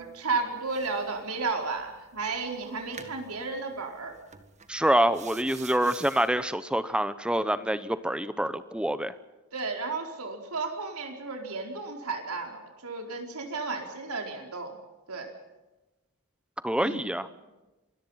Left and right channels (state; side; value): normal; both; correlation 0.59